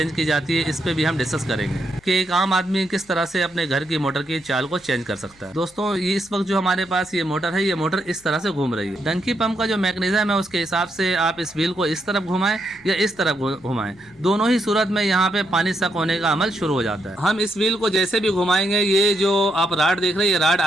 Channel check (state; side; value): noise; left; hum, 28 dB below the sound